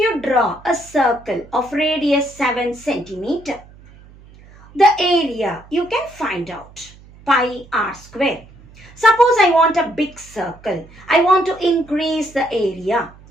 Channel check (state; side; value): noise; right; hum, 23 dB below the sound